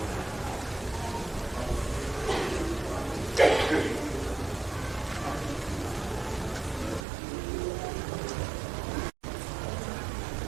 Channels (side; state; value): left; drops out; at 7.1 s